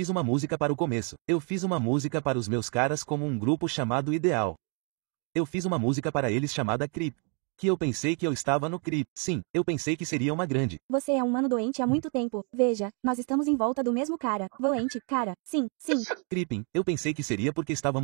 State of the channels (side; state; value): left; quieter; 38.4 dB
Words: uma música para o começo. Eu fiz uma música para os meus caras como um grupo chamado Ideal. Eu fiz uma música para eles chamada Creep. Que eu pensei que eu estava no Creep. Sim, eu pensei que seria uma grande. Você é um mano doente há muito tempo. Veja, nós estamos em volta do mesmo cara. Doente, cara. Sim, sim. Creeping, eu pensei que seria porque